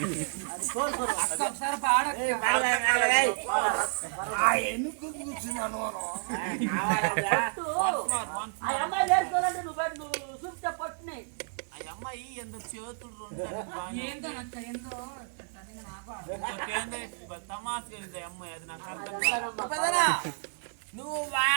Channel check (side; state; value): left; silent; digital silence